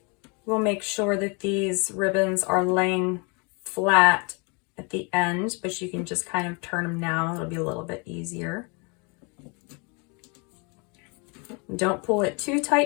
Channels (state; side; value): quieter; right; 32.7 dB